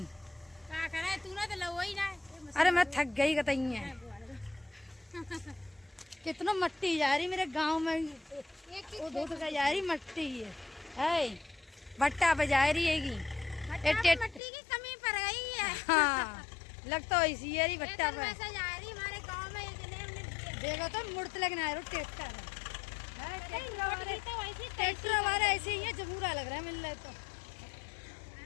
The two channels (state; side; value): drops out; right; at 14.4 s